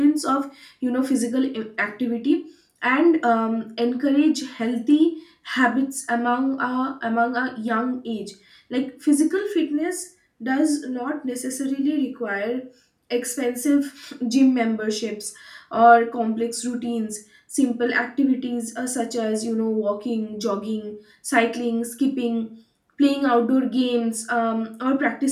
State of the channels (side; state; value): both; identical; correlation 1.00